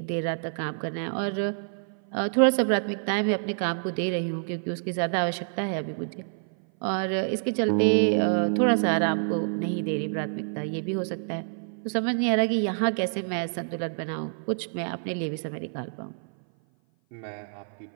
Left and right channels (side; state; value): left; silent; 56 dB below the other